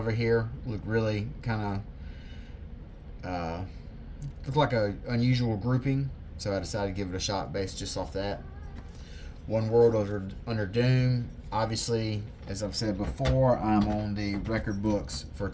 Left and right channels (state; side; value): identical; both; correlation 1.00